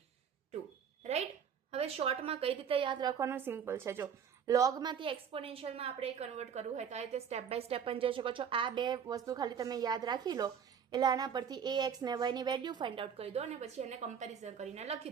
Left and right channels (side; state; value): left; quieter; 7.6 dB